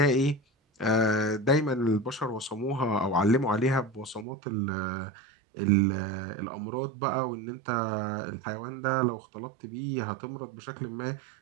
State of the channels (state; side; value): drops out; left; at 4.2 s